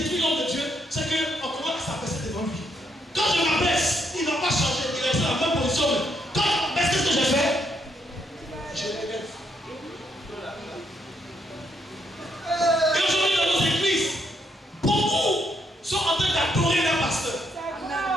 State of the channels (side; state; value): both; normal; correlation 0.75